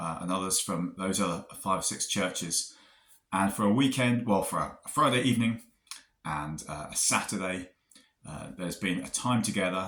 from those other 5 or 6 churches, and for a weekend, for a Friday evening and a Saturday, there's been a time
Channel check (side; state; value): both; identical; correlation 1.00